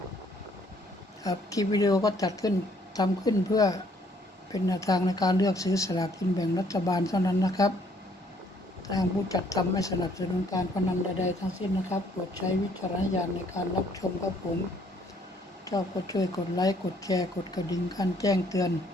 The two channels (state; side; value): normal; both; correlation 0.64